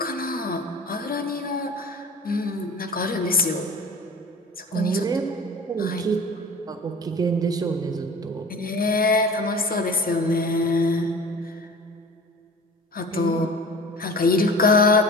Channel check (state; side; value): normal; both; correlation 0.40